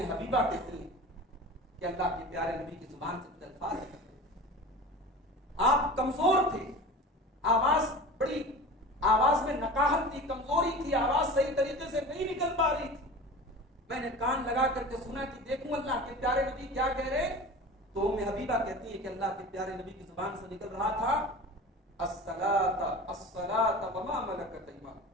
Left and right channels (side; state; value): both; normal; correlation 0.35